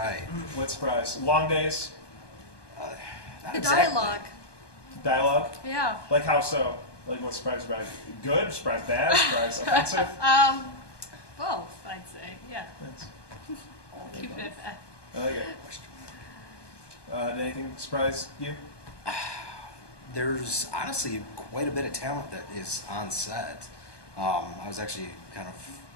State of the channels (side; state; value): right; late; 1.2 ms